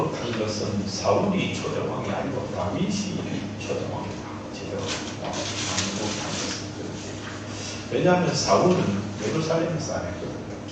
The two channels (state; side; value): identical; both; correlation 1.00